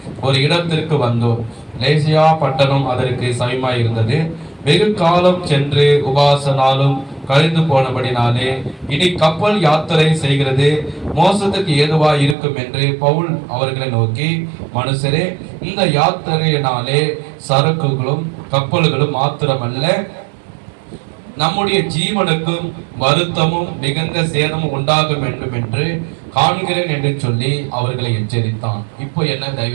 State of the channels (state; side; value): drops out; left; at 12.4 s